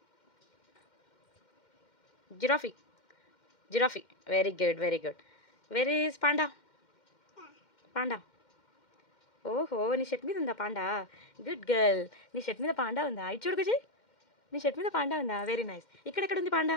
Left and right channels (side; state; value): right; late; 2.1 ms